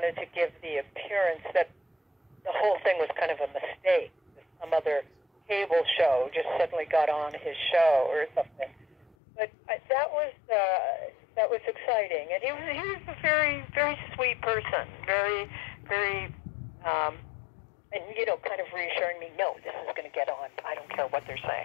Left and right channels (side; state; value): right; drops out; at 9.2 s